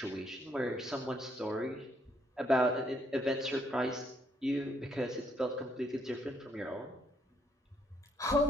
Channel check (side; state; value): both; normal; correlation 0.71